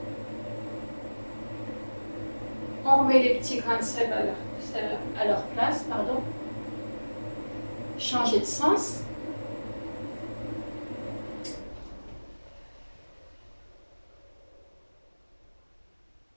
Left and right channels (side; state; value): both; inverted; correlation -1.00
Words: On remet les petits grains de sel à leur place, pardon. Changer de sens.